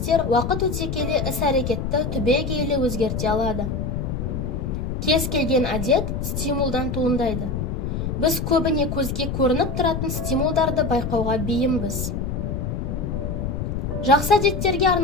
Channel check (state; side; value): noise; left; rumble, 3 dB below the sound